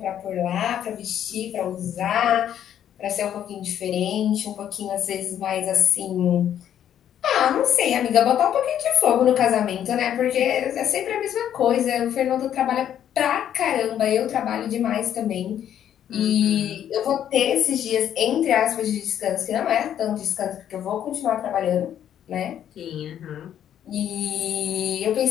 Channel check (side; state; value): right; quieter; 10.2 dB